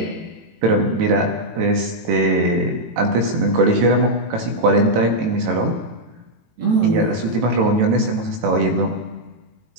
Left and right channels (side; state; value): left; late; 18 ms